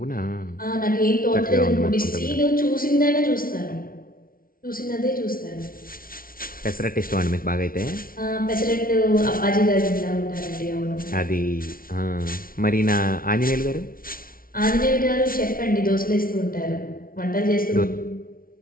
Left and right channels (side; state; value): right; late; 0.42 ms